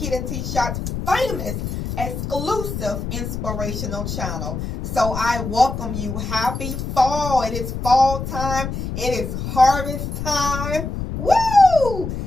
famous exclusive inspirational channel. So I welcome you. Happy fall. It is fall time. It is harvest time. Woo!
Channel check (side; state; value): left; noise; rumble, 5 dB below the sound